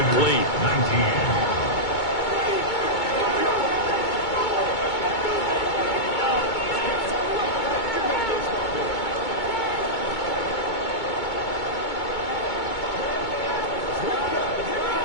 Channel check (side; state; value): right; late; 2.2 ms